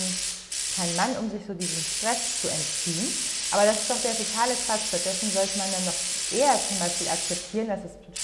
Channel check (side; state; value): both; identical; correlation 1.00